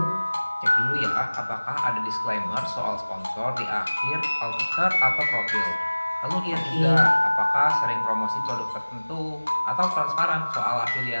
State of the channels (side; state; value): both; inverted; correlation -1.00